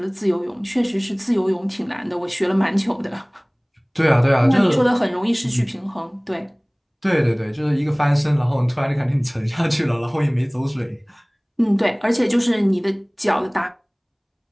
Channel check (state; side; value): identical; both; correlation 1.00